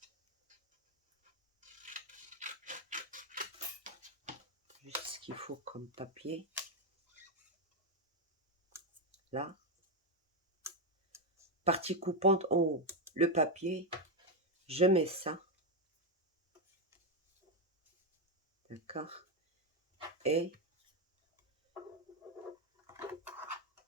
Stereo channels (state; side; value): normal; both; correlation 0.06